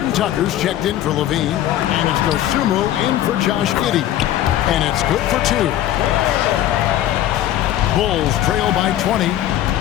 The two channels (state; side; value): quieter; right; 12.6 dB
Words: Tucker's checked in for Levine, and it's Dosunmu in for Josh Giddey. And it's good for 2. Bulls trail by 20.